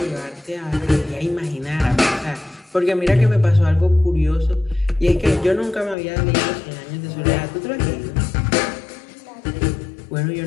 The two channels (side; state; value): right; drops out; at 6.0 s